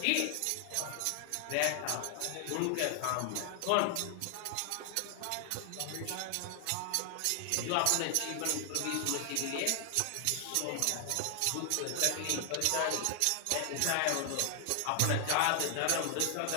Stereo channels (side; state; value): both; different; correlation 0.00